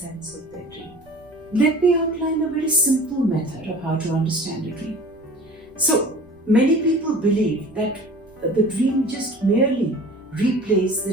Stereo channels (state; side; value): noise; right; rumble, 28 dB below the sound